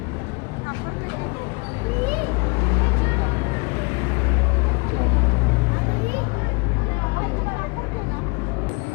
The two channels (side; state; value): right; quieter; 31.5 dB